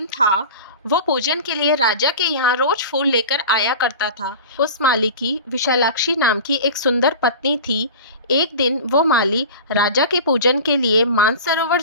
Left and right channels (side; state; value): both; inverted; correlation -0.34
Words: था, वो पूजन के लिए राजा के यहाँ रोज फूल लेकर आया करता था। उस माली की विशालाक्षी नाम की एक सुंदर पत्नी थी। एक दिन वो माली राजा के पूजन के लिए मानसरोवर